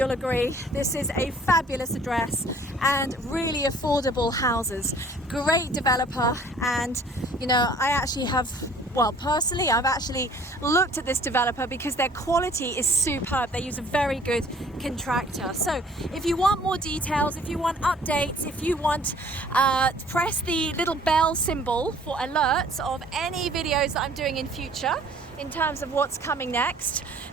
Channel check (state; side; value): normal; both; correlation 0.54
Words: agree this is a fabulous address and really affordable houses. Great developer, and you know, I actually have, well, personally, I've actually looked at this developer because their quality is superb. They use a very good contractor. So if you want more details, if you want updates, if you want, press the little bell symbol for alerts of any videos that I'm doing in future in terms of what's coming next.